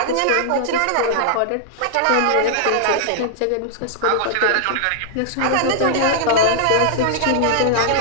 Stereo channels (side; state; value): both; different; correlation -0.01